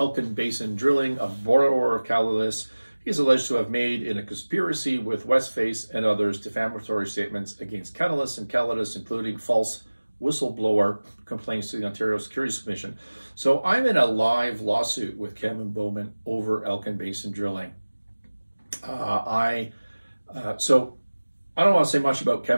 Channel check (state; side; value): inverted; both; correlation -1.00